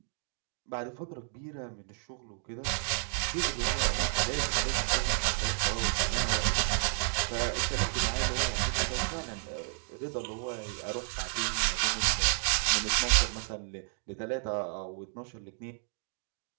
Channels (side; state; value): left; silent; 57 dB below the other